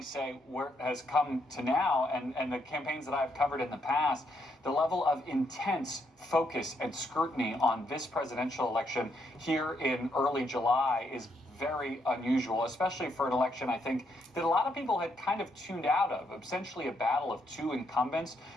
only say where it has come to now, and the campaigns that I've covered in the past, the level of intense focus and scrutiny on this presidential election here in early July is very unusual, especially for an election, I think, that a lot of people had kind of tuned out of. Essentially a battle of two incumbents,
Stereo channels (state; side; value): normal; both; correlation 0.76